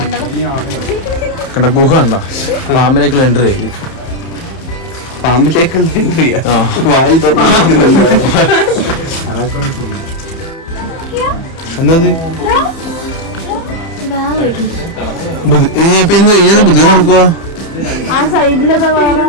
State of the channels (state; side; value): late; right; 30 ms